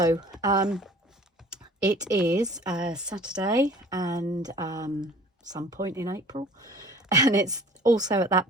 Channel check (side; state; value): both; normal; correlation 0.49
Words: it is Saturday and some point in April, and it's also at that